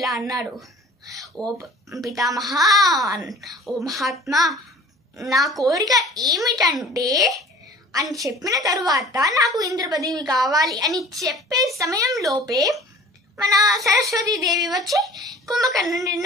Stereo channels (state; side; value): normal; both; correlation 0.46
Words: అన్నాడు, ఓ పితామహ, ఓ మహాత్మా, నా కోరిక ఏమిటంటే అని చెప్పిన తరువాత నాకు ఇంద్ర పదవి కావాలి అని చెప్పే సమయంలోపే మన సరస్వతీదేవి వచ్చి కుంభకర్ణుడి